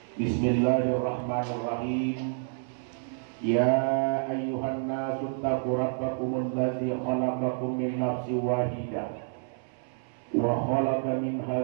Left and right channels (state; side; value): silent; left; 59 dB below the other